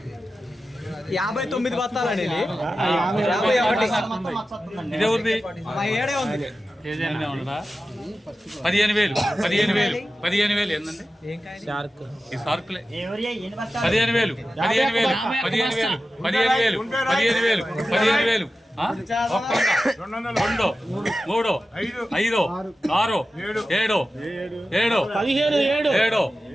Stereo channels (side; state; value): both; normal; correlation 0.93